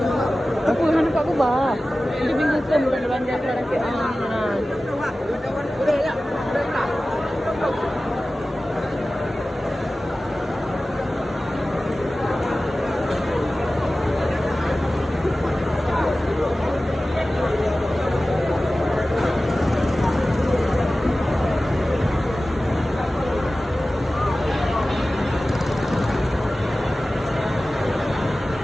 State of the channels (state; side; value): normal; both; correlation 0.96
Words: Aku nak nampak aku bah. Dia bingung bukan belanja sekarang ke.